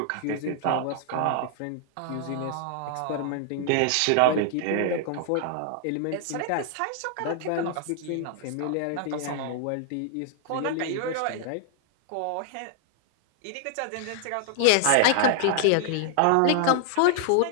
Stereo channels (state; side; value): different; both; correlation 0.00